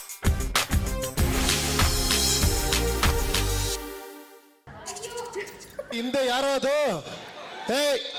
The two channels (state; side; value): identical; both; correlation 1.00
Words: ಹಿಂದೆ ಯಾರೋ ಅದು,